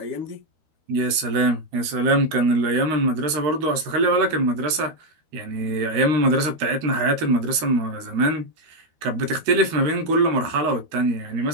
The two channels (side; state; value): left; late; 13 ms